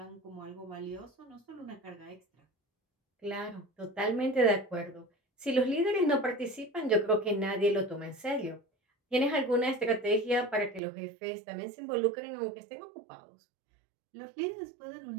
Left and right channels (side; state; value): left; drops out; at 10.8 s